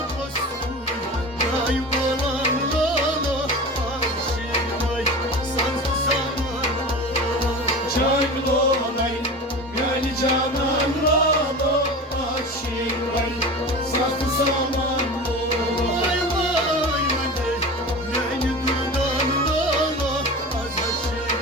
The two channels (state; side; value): normal; both; correlation 0.32